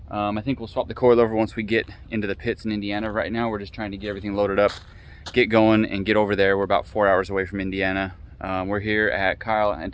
I think we'll swap the coilover once we get into the pits in Indiana. Right now we're just trying to get everything loaded up, get going, and get over there. We're about 4 hours away from Indiana. We're here at Kyle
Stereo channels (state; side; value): identical; both; correlation 1.00